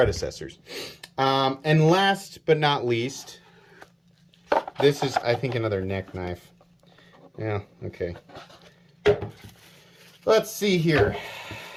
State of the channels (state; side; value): identical; both; correlation 1.00